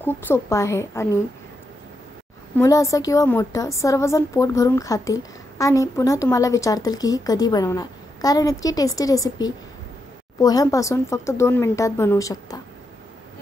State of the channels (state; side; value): normal; both; correlation 0.83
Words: सोपं आहे आणि मुलं असं किंवा मोठं सर्वजण पोट भरून खातील आणि पुन्हा तुम्हाला विचारतील की ही कधी बनवणार, कारण इतकी टेस्टी रेसिपी पोह्यांपासून फक्त 2 मिनिटात बनवू शकता।